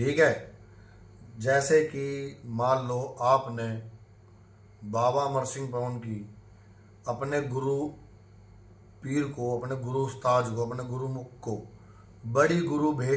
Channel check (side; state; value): both; identical; correlation 1.00